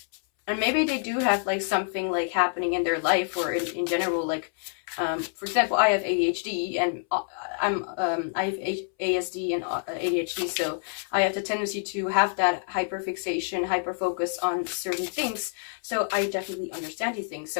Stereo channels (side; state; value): right; silent; 60 dB below the other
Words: And maybe they do have like something like happening in their life, or in general, like for example, I have ADHD, and I have ASD and ADHD, so I have the tendency to have that hyperfixation, hyperfocus on certain things. So I definitely understand these things.